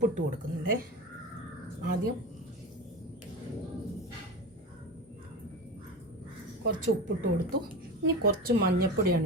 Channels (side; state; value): both; normal; correlation 0.26